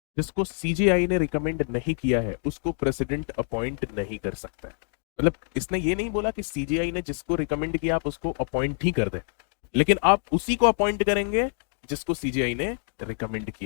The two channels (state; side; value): silent; right; digital silence